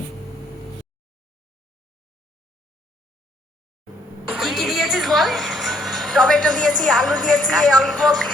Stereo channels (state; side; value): normal; both; correlation 0.67